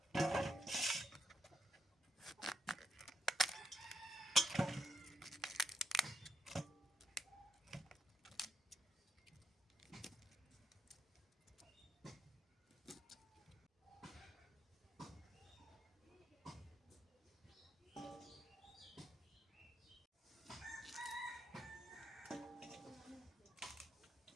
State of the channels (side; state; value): both; normal; correlation 0.80